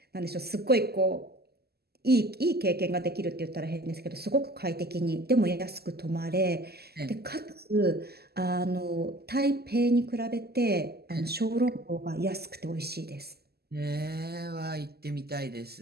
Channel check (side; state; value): left; late; 0.46 ms